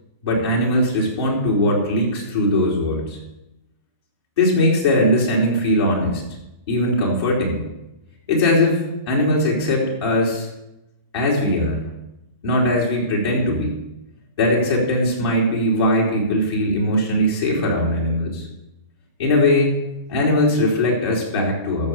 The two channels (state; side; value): inverted; both; correlation -0.36